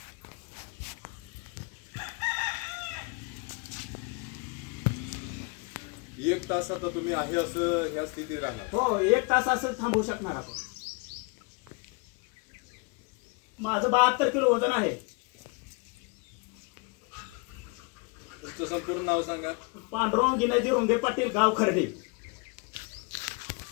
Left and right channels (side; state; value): right; quieter; 30.5 dB